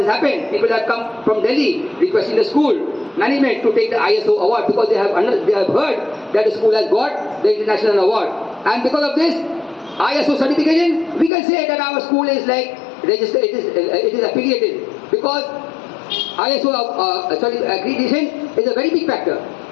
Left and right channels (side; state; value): right; drops out; at 11.3 s